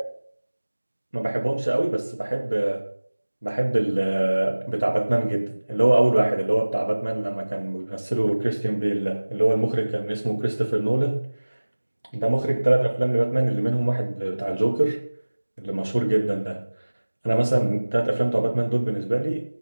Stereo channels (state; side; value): inverted; both; correlation -1.00